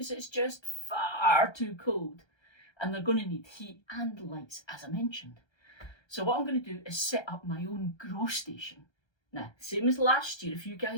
it's just far too cold. And they're going to need heat and lights, as I mentioned. So what I'm going to do is set up my own grow station. Now, same as last year, if you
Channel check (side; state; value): right; late; 1.3 ms